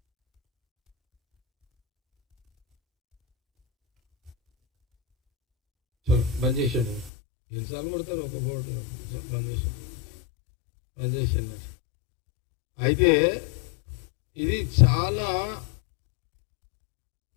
బంద్ చేసాడు. ఎన్నిసార్లు కొడతారు ఒక బోర్డు బంద్ చేసాను. అయితే ఇది చాలా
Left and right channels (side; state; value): right; drops out; at 7.1 s